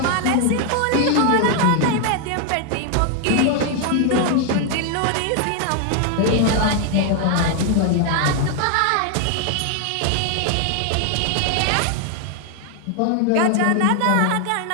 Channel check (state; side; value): different; both; correlation 0.00